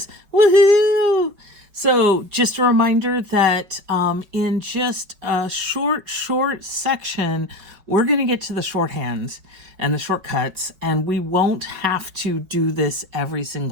Woohoo! So just a reminder that in just a short section, we're going to get to the shorthands and the shortcuts, and we won't have to do this every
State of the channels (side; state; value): left; late; 5.2 ms